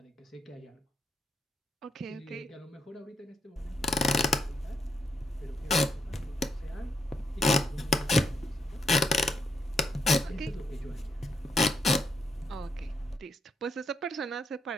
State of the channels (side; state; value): both; normal; correlation 0.78